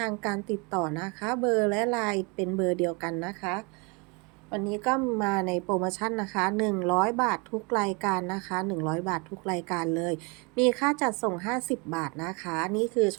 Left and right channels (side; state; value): left; quieter; 30.7 dB